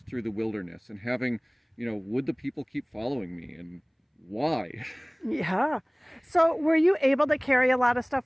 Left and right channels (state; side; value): identical; both; correlation 1.00